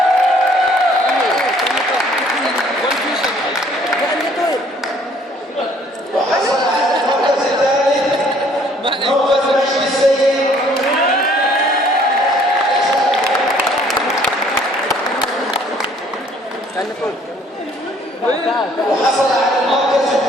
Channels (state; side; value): normal; both; correlation 0.59